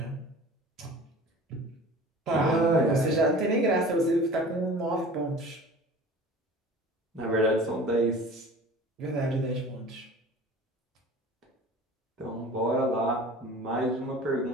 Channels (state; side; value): normal; both; correlation 0.41